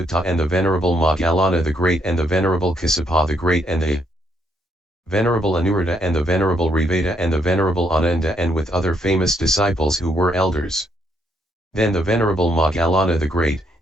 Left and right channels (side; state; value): both; normal; correlation 0.73